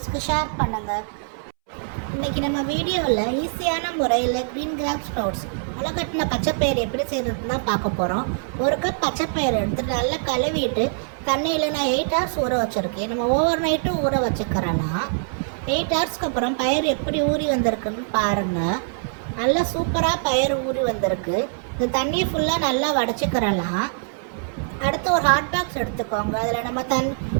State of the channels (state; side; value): silent; left; 63 dB below the other